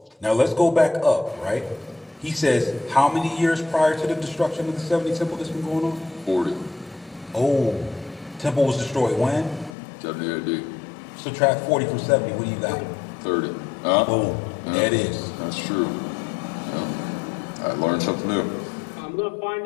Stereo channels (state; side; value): drops out; right; at 9.8 s